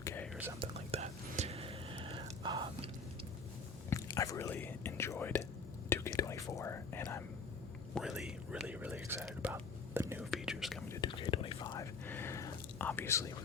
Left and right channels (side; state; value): right; quieter; 4.1 dB